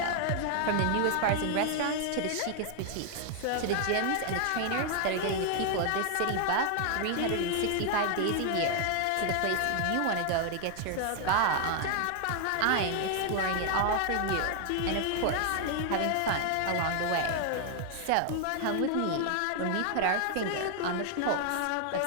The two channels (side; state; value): both; different; correlation 0.00